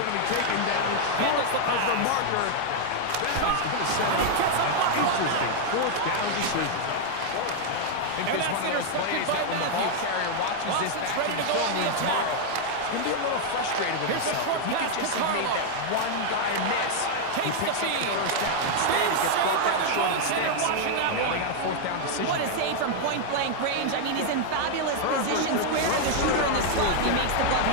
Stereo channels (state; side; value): different; both; correlation 0.00